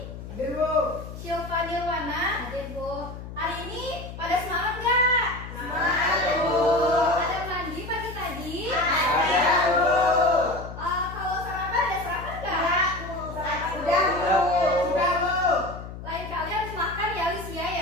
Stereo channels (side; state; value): left; noise; hum, 11 dB below the sound